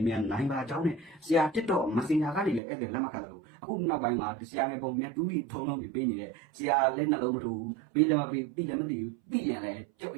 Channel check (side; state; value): left; drops out; at 2.6 s